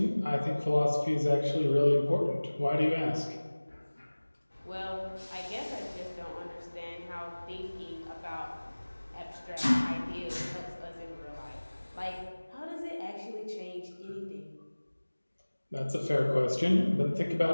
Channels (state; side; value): inverted; both; correlation -1.00